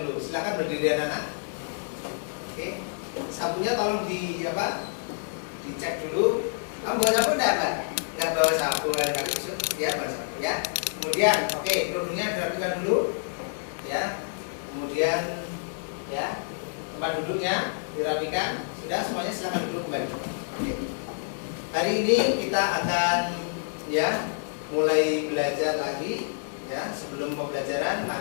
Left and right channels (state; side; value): silent; right; digital silence